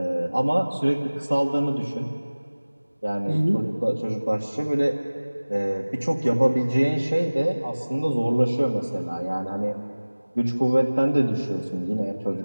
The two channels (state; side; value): inverted; both; correlation -1.00